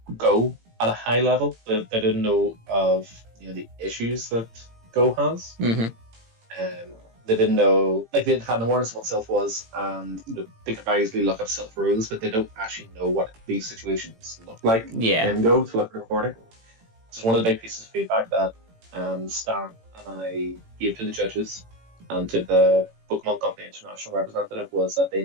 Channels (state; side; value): late; left; 18 ms